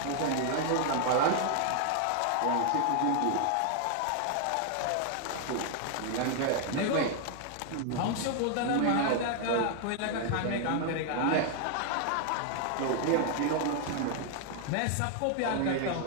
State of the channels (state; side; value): different; both; correlation 0.00